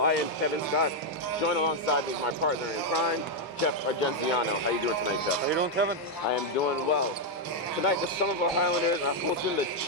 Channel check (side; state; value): both; normal; correlation 0.00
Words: I am Kevin Scott, joined alongside me my partner in crime, Jeff Argenziano. How you doing tonight, Jeff? How you doing, Kevin? I am doing well. Tonight, the Somerville Highlanders are hosting the